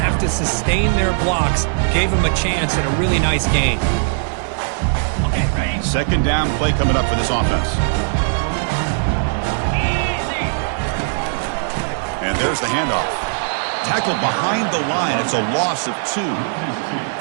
to sustain their blocks. Gave them a chance at a really nice gain. 2nd down play coming up for this offense. And there's the handoff. Tackled behind the line. It's a loss of 2.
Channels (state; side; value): silent; left; digital silence